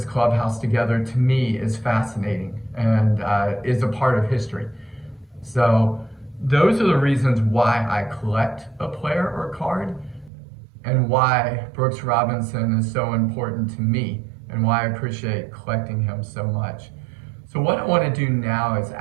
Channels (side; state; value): left; drops out; at 10.3 s